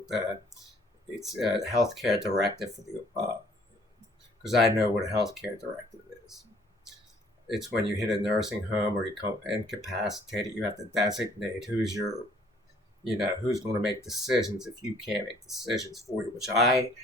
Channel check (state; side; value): normal; both; correlation 0.59